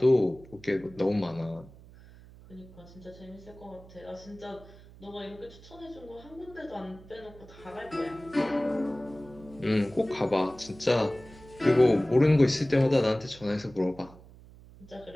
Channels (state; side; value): noise; right; hum, 21 dB below the sound